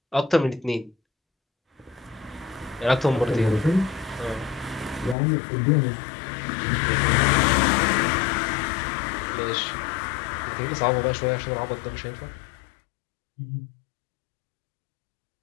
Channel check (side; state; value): right; drops out; at 5.2 s